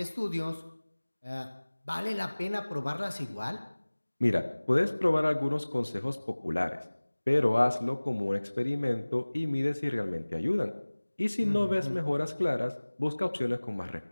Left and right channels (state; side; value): inverted; both; correlation -1.00